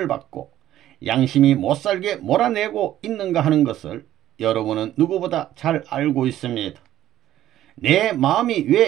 받고 양심이 못살게 몰아내고 있는가 하는 것을 여러분은 누구보다 잘 알고 있습니다. 내 마음이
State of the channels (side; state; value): left; quieter; 12.9 dB